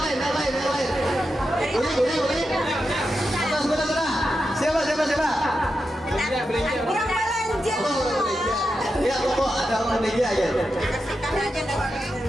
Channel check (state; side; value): normal; both; correlation 0.88